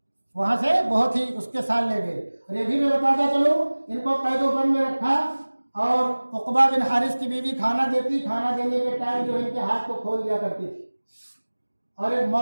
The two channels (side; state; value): both; inverted; correlation -1.00